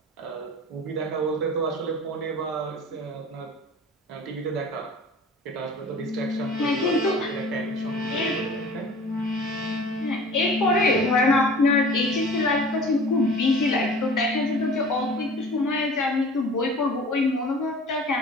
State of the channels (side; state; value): both; normal; correlation 0.43